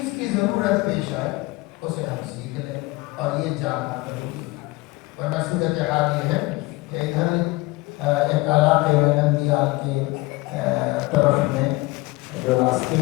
کی ضرورت پیش آئے اسے ہم سیکھ لیں، اور یہ جاننا ضروری ہے۔ ورنہ صورت حال یہ ہے کہ ادھر ایک علاقے میں نندیال کے طرف میں جو راستے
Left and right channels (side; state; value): right; quieter; 21.8 dB